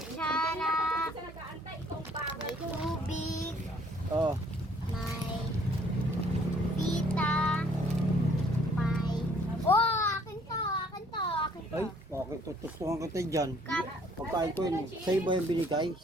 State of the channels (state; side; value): normal; both; correlation 0.60